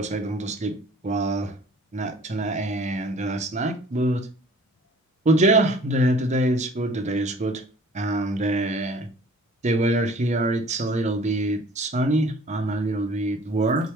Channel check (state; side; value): normal; both; correlation 0.50